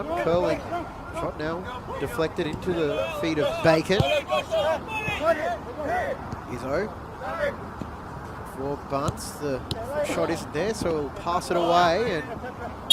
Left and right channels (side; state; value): both; identical; correlation 1.00